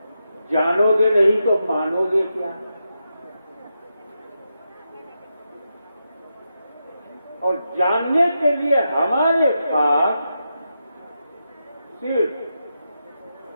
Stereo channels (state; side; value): inverted; both; correlation -0.86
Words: जानोगे नहीं तो मानोगे क्या? और जानने के लिए हमारे पास सिर्फ